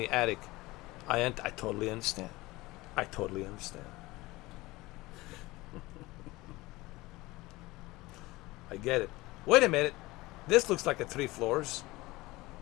attic. I totally understand. I totally understand. I get it. Wait a minute. This looks like a 3 floors.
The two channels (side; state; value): right; quieter; 20.4 dB